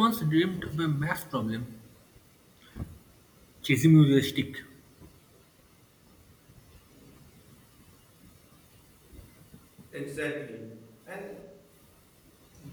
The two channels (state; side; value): identical; both; correlation 1.00